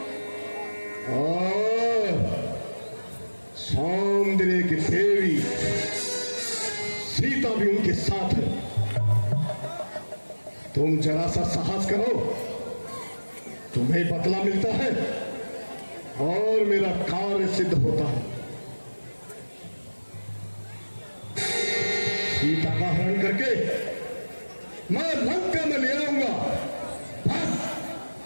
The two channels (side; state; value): both; inverted; correlation -1.00